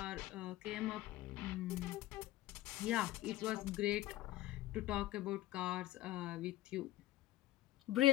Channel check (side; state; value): right; quieter; 16.0 dB